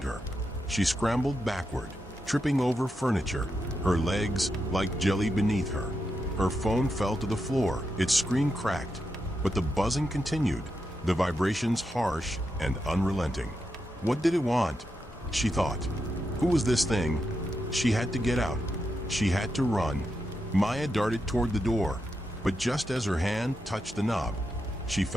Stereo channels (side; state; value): both; normal; correlation 0.85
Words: her. She scrambled backward, tripping over furniture, her legs like jelly beneath her. Her phone fell to the floor, its screen cracked, but the buzzing continued, the vibrations harsh and unrelenting. What did it want? She thought. Who was this thing? She had to get out. She had to run. Maya darted toward the door, but just as her hand touched the knob, she